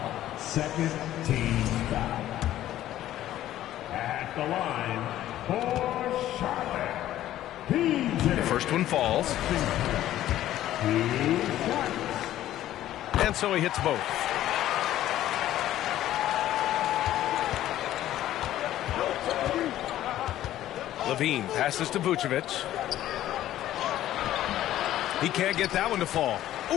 Second team foul. At the line for Charlotte. The first one falls. And so he hits both. Levine passes to Vucevic. He can't get that one to fall.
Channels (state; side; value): quieter; right; 13.2 dB